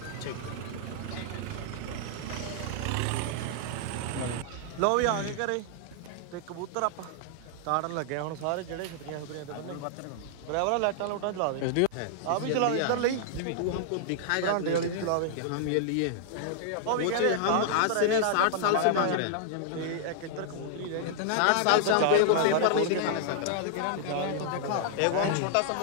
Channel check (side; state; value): both; different; correlation -0.01